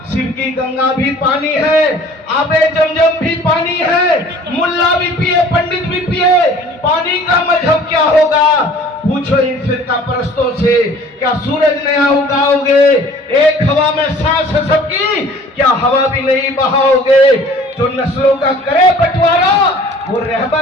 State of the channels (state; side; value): normal; both; correlation 0.50